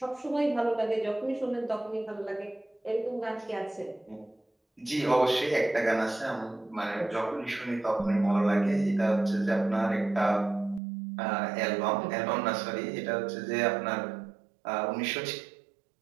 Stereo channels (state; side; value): drops out; left; at 10.8 s